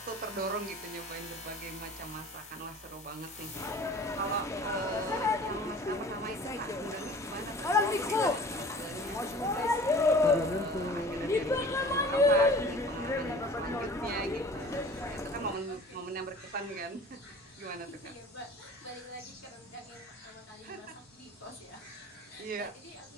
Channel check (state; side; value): normal; both; correlation 0.44